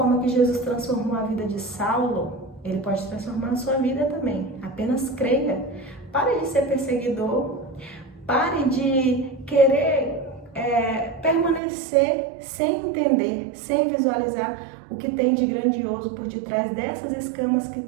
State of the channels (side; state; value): left; drops out; at 11.6 s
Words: que Jesus transformou a vida de Saulo, ele pode transformar a sua vida também. Apenas creia. Pare de ser perseguidor, pare de querer permanecer sem entender, sem visualizar o que tem de grandioso por detrás dessas escamas que